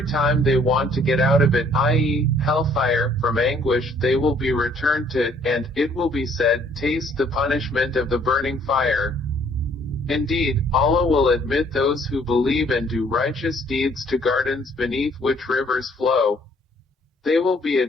time they want to get out of it, i.e., hellfire, from anguish, they will be returned to it, and it will be said, taste the punishment of the burning fire. Indeed, Allah will admit those who believe and do righteous deeds to gardens beneath which rivers flow. They will be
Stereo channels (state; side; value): normal; both; correlation 0.62